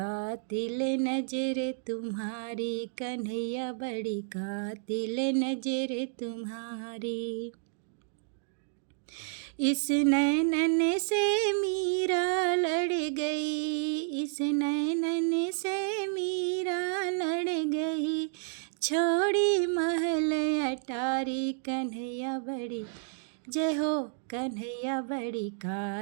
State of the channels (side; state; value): left; silent; digital silence